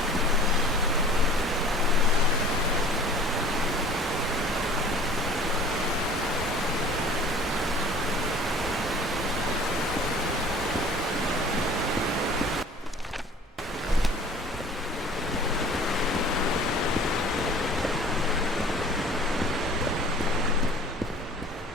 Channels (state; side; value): normal; both; correlation 0.46